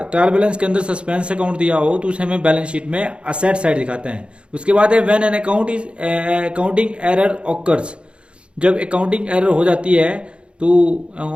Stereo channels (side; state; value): left; late; 0.057 ms